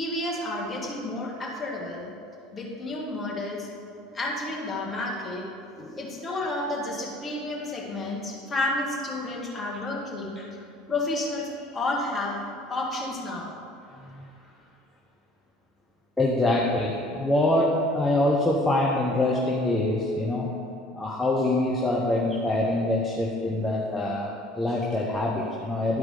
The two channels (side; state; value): both; normal; correlation 0.56